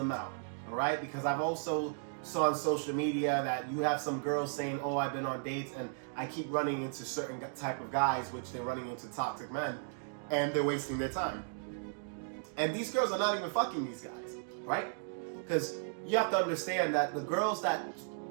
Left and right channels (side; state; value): left; silent; digital silence